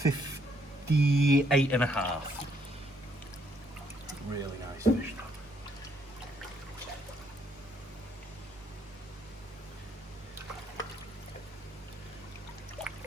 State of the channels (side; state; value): both; normal; correlation 0.70